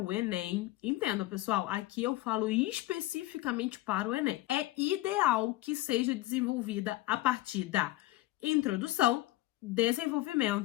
Enem, entenda pessoal, aqui eu falo especificamente para o Enem, é ideal que seja desenvolvida a partir da introdução,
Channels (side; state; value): right; quieter; 17.4 dB